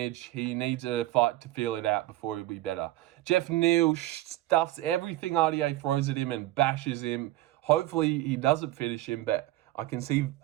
He needs a fight to feel it out before he'll be better. Geoff Neal stuffs everything RDA throws at him and bashes him. Hopefully he doesn't finish him, but I can see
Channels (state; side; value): quieter; left; 15.9 dB